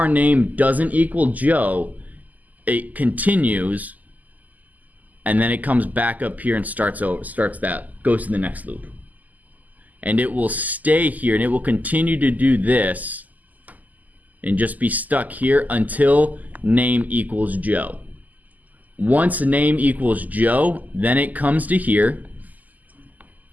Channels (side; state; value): left; late; 0.080 ms